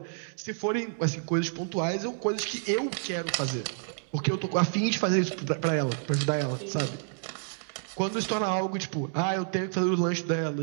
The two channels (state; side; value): silent; left; digital silence